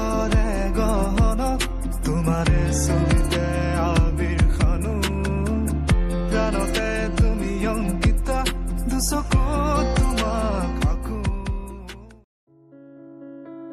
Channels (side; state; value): both; identical; correlation 1.00